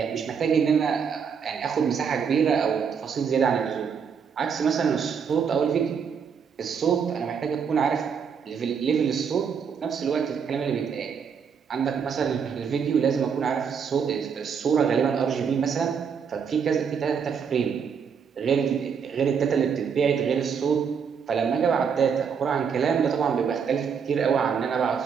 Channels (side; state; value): left; quieter; 6.7 dB